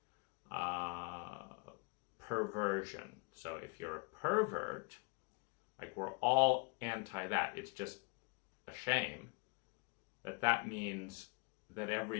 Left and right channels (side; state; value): right; quieter; 31.5 dB